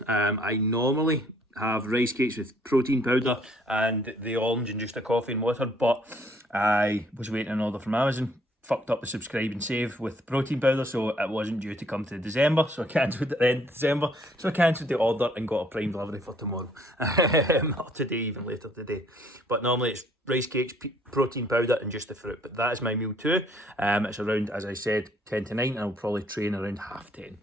I normally have rice cakes with protein powder and the orange and just a coffee and water, but I was waiting on an order from Amazon, fucked up the subscribe and save with protein powder, so it wasn't due to come to December, so I cancelled it at the end of December, so I cancelled the order and got a prime delivery for tomorrow, or today, even later today. But normally it's rice cakes, protein powder and just the fruit, but that is my meal too. It's around, as I said, 10 to 9, and I'll probably train around 10:30.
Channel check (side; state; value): both; normal; correlation 0.63